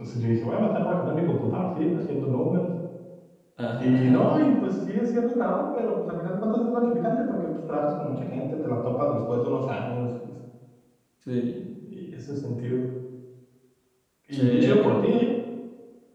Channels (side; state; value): both; identical; correlation 1.00